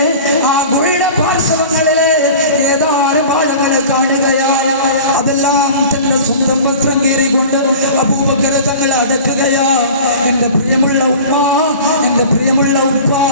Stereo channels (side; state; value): both; inverted; correlation -0.40